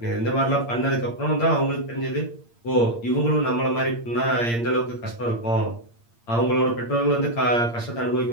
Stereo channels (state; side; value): late; right; 8.6 ms